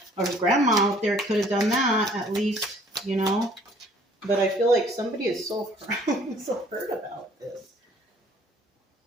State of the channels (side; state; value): both; normal; correlation 0.57